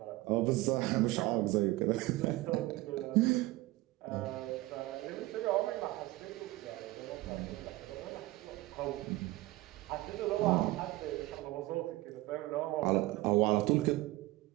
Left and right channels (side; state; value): left; quieter; 18.9 dB